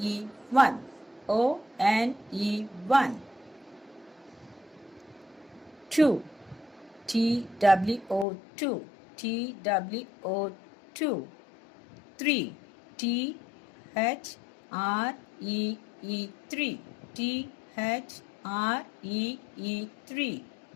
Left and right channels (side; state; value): right; drops out; at 8.2 s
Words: 1. O-N-E 1. 2. T-W-O 2. T-W-O 2. 3. T-H-R-E-E 3. T-H-R-E-E 3.